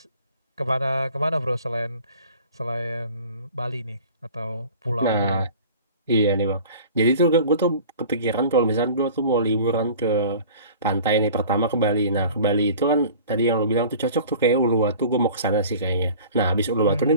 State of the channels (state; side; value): inverted; both; correlation -0.44